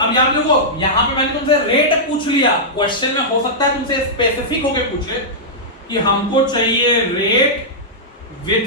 यार देखो यहां पे मैंने तुमसे रेट पूछ लिया, क्वेश्चन में हो सकता है तुमसे स्पेसिफिक होके पूछे कि हमको चाहिए rate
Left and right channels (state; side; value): normal; both; correlation -0.11